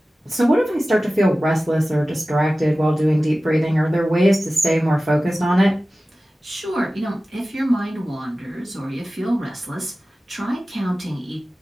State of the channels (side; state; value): both; normal; correlation 0.96